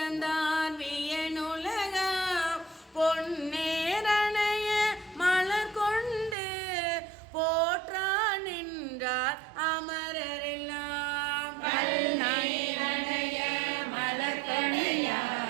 வியனுலகா பொன்னேரணைய மலர் கொண்டு போற்றா நின்றார் அமரரெல்லாம் கல்நீரணைய மலர்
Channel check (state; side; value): drops out; left; at 6.4 s